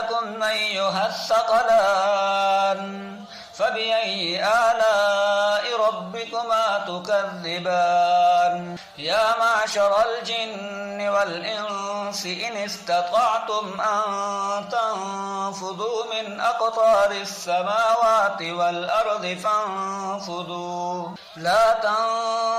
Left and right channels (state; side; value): identical; both; correlation 1.00